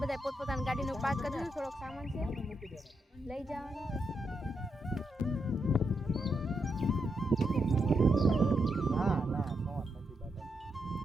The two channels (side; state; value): both; normal; correlation 0.82